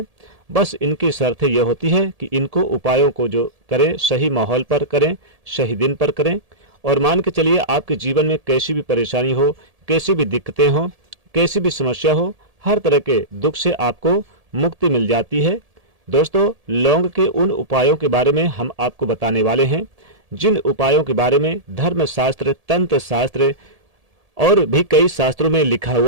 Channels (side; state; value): left; late; 1.7 ms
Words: बस इनकी शर्त यह होती है कि इनको उपायों को जो करें सही माहौल पर करें, सही दिन पर करें। और मान के चलिए आपके जीवन में कैसी भी परेशानी हो, कैसी भी दिक्कतें हो, कैसी भी समस्या हो, हर तरह के दुख से आपको मुक्ति मिल जाती है। दोस्तों, लौंग के उन उपायों के बारे में हम आपको बताने वाले हैं जिन उपायों के बारे में धर्मशास्त्र, तंत्र शास्त्र और भी कई शास्त्रों में लिखा